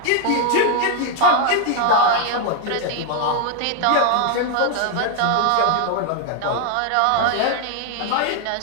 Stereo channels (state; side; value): different; both; correlation 0.00